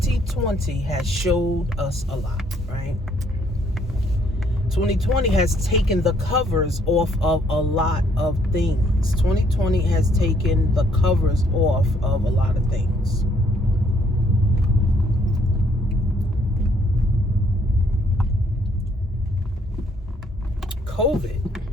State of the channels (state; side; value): normal; both; correlation 0.67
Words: has showed us a lot, right? 2020 has taken the covers off of a lot of things. 2020 has taken the covers off of a lot of things. COVID